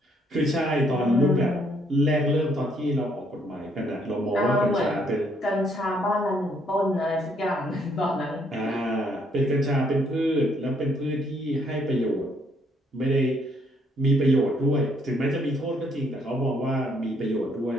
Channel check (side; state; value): both; normal; correlation 0.69